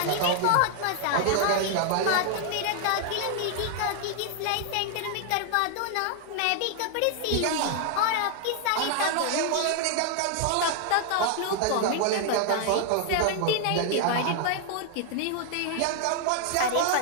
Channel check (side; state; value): both; different; correlation 0.00